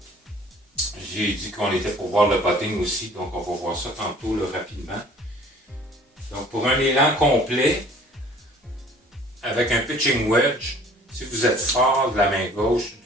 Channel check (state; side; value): normal; both; correlation 0.52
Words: J'ai dit qu'on était pour voir le putting aussi, donc on va voir ça tantôt là, rapidement. Donc pour un élan complet, avec un pitching wedge, si vous êtes fort de la main gauche,